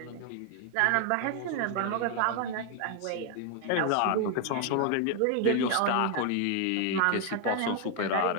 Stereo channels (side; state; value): both; different; correlation 0.00